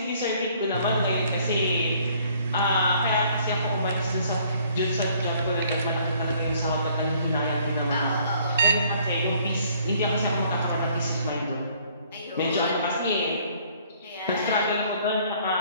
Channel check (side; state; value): both; inverted; correlation -0.60